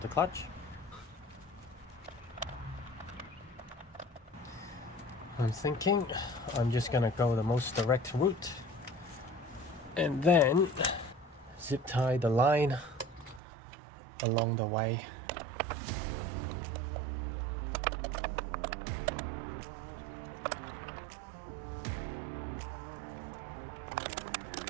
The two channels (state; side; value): drops out; left; at 13.4 s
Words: the clutch. I'm thinking I'm just gonna go the most direct route and then zip tie the line along the way.